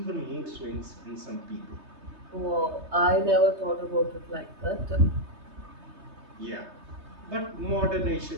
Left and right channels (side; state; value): left; late; 3.2 ms